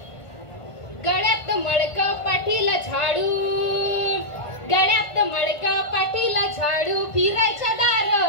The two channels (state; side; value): late; right; 1.5 ms